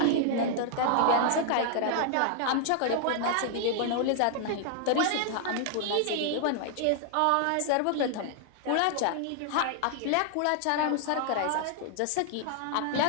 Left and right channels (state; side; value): different; both; correlation 0.00